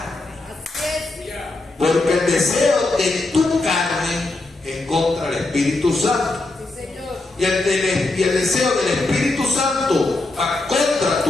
Porque el deseo de tu carne es contra el Espíritu Santo. Y el deseo del Espíritu Santo va contra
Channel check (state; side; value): quieter; right; 3.1 dB